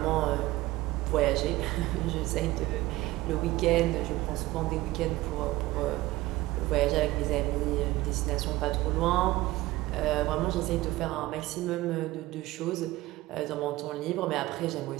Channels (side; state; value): left; quieter; 18.0 dB